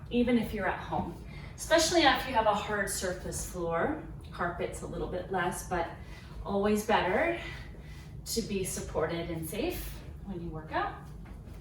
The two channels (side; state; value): both; identical; correlation 1.00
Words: even if you're at home, especially if you have a hard surface floor. Carpet's a little bit less, but always better to be supported and safe when you work out.